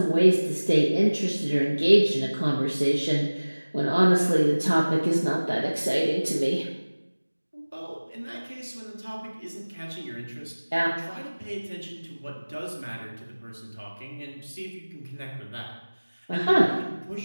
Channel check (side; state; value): both; inverted; correlation -1.00